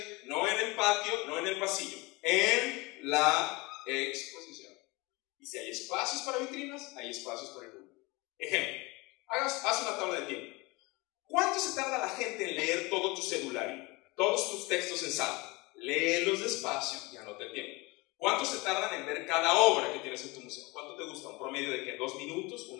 no en el patio, no en el pasillo, en la exposición. Y si hay espacios para vitrinas, hay espacios para el público. Ejemplo, haz una tabla de tiempo. ¿Cuánto se tarda la gente en leer todo tu cedulario, todos tus textos en sala? Léelos despacio y anota el tiempo. ¿Cuánto se tardan en ver cada obra que tienes en tu museo? ¿Cuánto te gusta? ¿Un promedio de qué? ¿2 minutos? ¿1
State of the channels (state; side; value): quieter; right; 24.4 dB